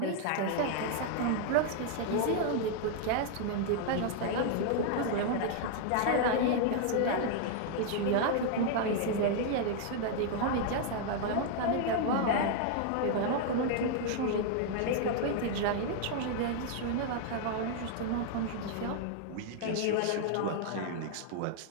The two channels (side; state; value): both; different; correlation 0.00